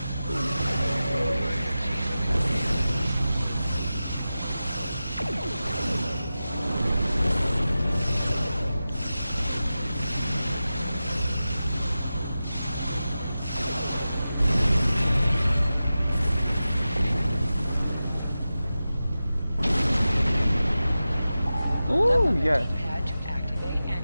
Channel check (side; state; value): both; inverted; correlation -0.94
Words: Ooh, yes. D-pad to activate and